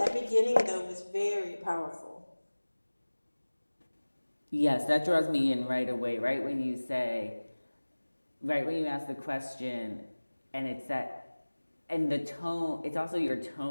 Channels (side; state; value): both; inverted; correlation -1.00